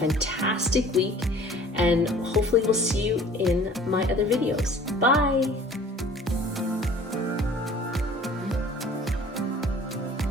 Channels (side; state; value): both; normal; correlation 0.49